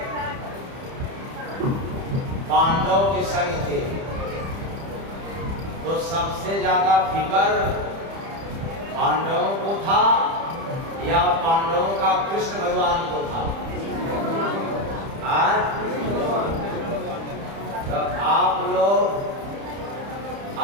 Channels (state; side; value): late; left; 30 ms